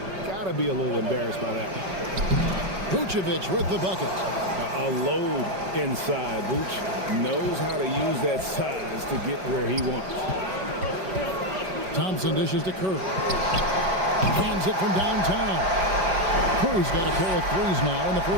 Got to be a little embarrassed by that one. Vucevic with the bucket. A load inside. Vuce knows how to use that size to get where he wants. Thompson dishes to Curry. Hands it from downtown. Curry's got a pair of 3s now in the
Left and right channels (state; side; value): late; left; 5.3 ms